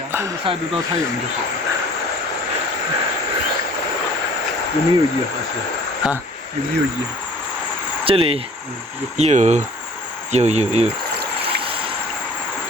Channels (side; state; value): both; normal; correlation 0.50